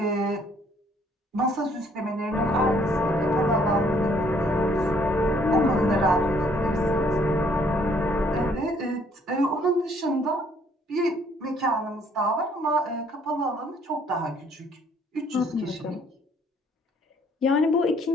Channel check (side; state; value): both; normal; correlation 0.63